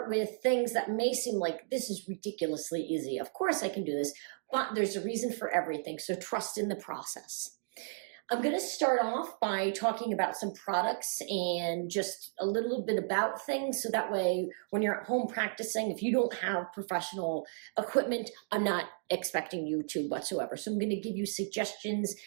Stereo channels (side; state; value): left; silent; digital silence